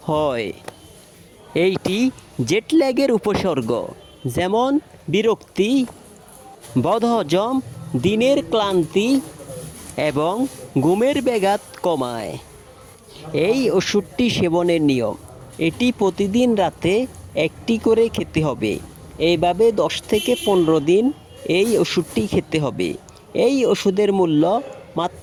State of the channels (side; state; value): both; identical; correlation 1.00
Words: হয়। এইটি জেটল্যাগের উপসর্গ, যেমন বিরক্তি, বদহজম, দিনের ক্লান্তি এবং ঘুমের ব্যাঘাত কমায়। এই ওষুধটি সেবনের নিয়ম: এটি প্রতিদিন রাতে একটি করে খেতে হবে। এইভাবে 10 থেকে 15 দিন এই ওষুধটি খেতে হবে। এই ওষুধের মূল্য